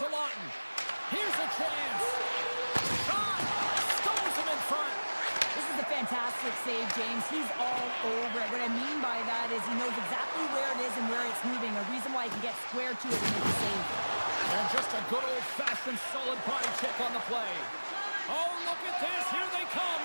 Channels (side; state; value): both; inverted; correlation -1.00